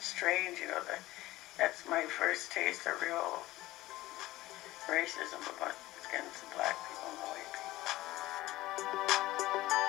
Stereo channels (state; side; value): quieter; right; 17.4 dB